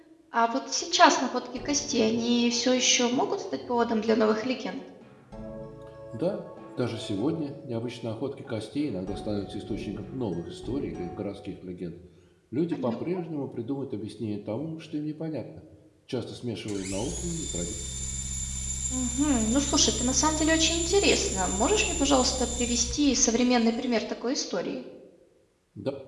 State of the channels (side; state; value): both; identical; correlation 1.00